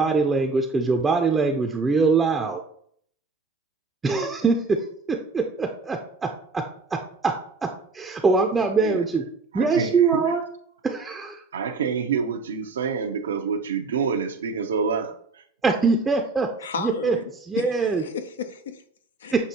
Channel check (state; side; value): quieter; left; 4.0 dB